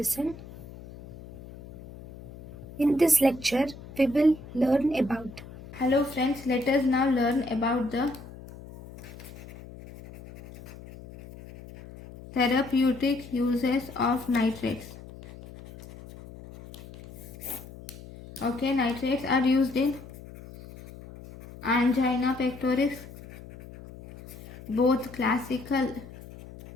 In this lecture, we will learn about. Hello friends, let us now learn about the therapeutic uses of nitrates. Okay, nitrates are used in angina pectoris, both classical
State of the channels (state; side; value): noise; left; hum, 16 dB below the sound